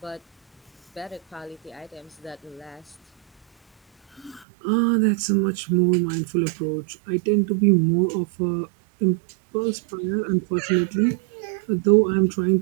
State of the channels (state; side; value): drops out; left; at 4.5 s